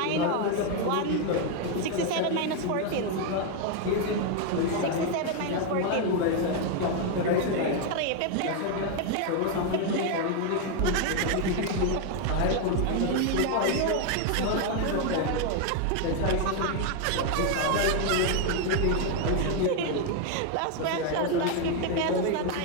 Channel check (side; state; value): both; different; correlation 0.01